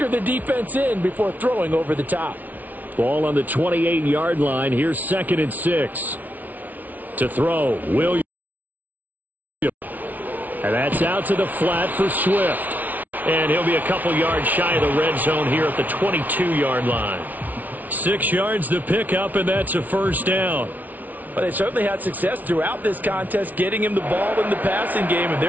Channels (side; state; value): left; late; 0.078 ms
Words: the defense in before throwing over the top. Ball on the 28-yard line. Here's 2nd and 6. To throw, Williams. And that's out to the flat for Swift. And he'll be a couple yards shy of the red zone here at the 22-yard line. 6 yards to pick up, and that's a first down. Well, they certainly had success throughout this contest, getting him the ball in the passing game, and